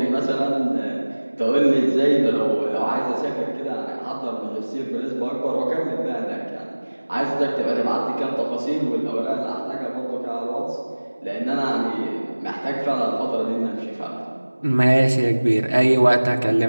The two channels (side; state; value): both; inverted; correlation -1.00